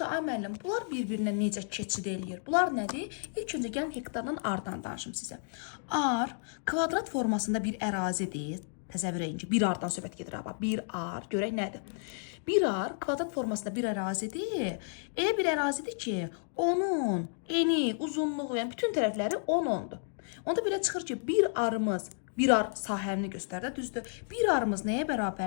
ay müəllim, bunlar bir-birinə necə keçid eləyir? Bunlar nədir? İlk öncə gəlin hektardan ardan danışım sizə. Ar kvadrat formasında bir ərazidir. Təsəvvür edin ki, bir ardan söhbət gedir. Bir ar, görək nədir? Bir ar kvadrat formasında bir ərazidir. Elə bir ərazidir ki, onun eni, uzunluğu, yəni bütün tərəfləri 10-10'dur. Onda belə çıxır ki, bir ar sahəni göstərdə, düzdür? Bir arımız nəyə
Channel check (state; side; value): silent; right; digital silence